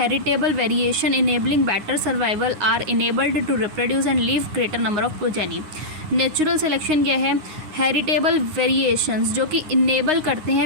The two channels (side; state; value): left; late; 9.6 ms